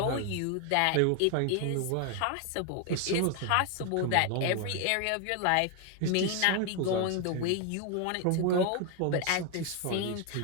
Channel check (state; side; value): different; both; correlation 0.01